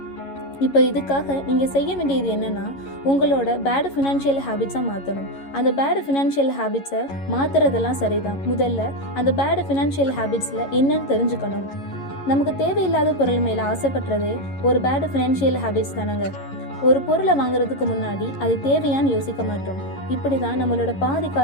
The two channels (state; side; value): late; right; 11 ms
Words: இப்போ இதுக்காக நீங்கள் செய்ய வேண்டியது என்னென்னா, உங்களோட பேடு ஃபினான்ஷியல் ஹேபிட்ஸாக மாற்றணும். அந்த பேடு ஃபினான்ஷியல் ஹேபிட்ஸை மாற்றுறதெல்லாம் சரிதான். முதல்ல அந்த பேடு ஃபினான்ஷியல் ஹேபிட்ஸில் என்னன்னு தெரிஞ்சுக்கணும். நமக்கு தேவையில்லாத பொருள் மேலே ஆசைப்படுறதே ஒரு பேடு ஃபினான்ஷியல் ஹேபிட்ஸ் தானங்க. ஒரு பொருளை வாங்குறதுக்கு முன்னாடி அது தேவையான்னு யோசிக்க மாட்டோம். இப்படி தான் நம்மளோட பாதி